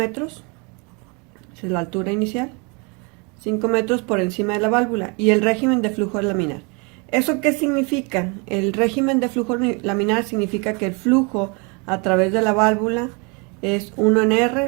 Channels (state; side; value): quieter; left; 31.8 dB